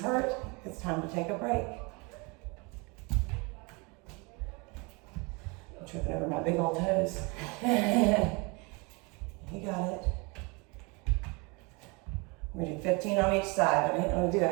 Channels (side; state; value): left; quieter; 29.3 dB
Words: hurt, it's time to take a break. I'm tripping over my big old toes. You got it. We're gonna do 15 on each side. I didn't want to do